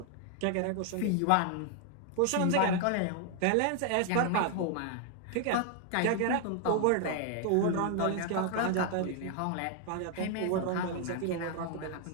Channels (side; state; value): both; different; correlation 0.00